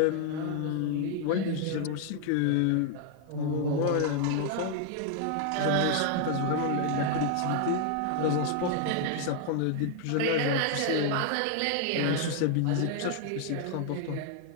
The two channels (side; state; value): both; different; correlation 0.00